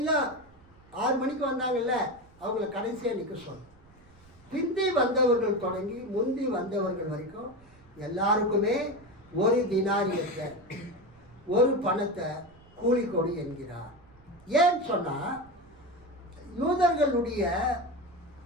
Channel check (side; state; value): right; noise; rumble, 26 dB below the sound